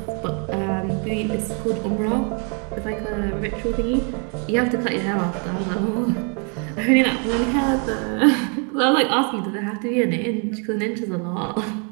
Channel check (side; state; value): left; quieter; 38.2 dB